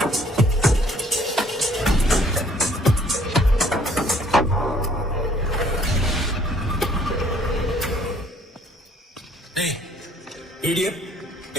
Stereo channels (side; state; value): both; normal; correlation 0.60